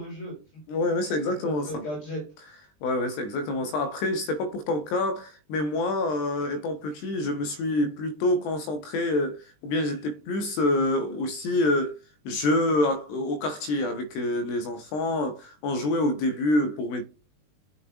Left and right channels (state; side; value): late; right; 20 ms